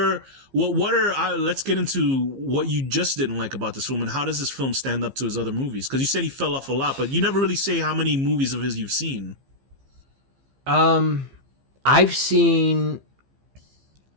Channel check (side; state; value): left; late; 15 ms